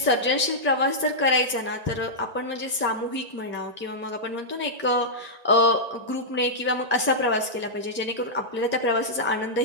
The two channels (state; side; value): late; left; 1.9 ms